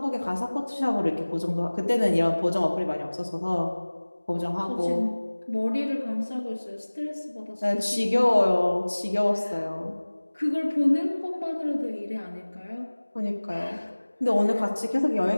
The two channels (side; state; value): both; inverted; correlation -1.00